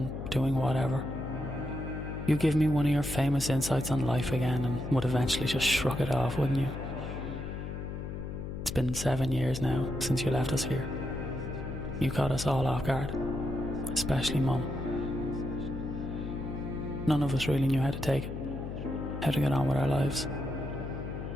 doing whatever. You give me one of your famous insights on life again and would eventually just shrug it off, wouldn't you? It's been 7 years now since you left us here. You caught us all off guard, especially Mum. None of us really knew how to take it, how to get on with our lives.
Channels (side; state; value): left; noise; hum, 6 dB below the sound